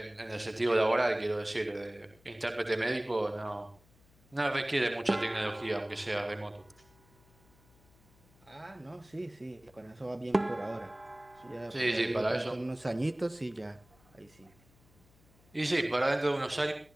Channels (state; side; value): noise; left; hum, 29 dB below the sound